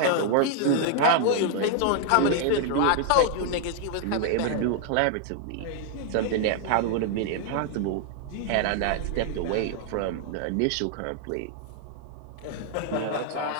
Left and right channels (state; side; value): different; both; correlation 0.00